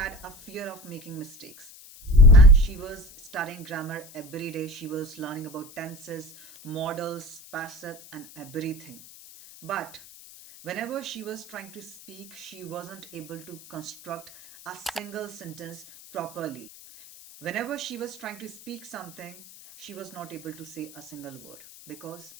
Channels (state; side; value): noise; left; hiss, 19 dB below the sound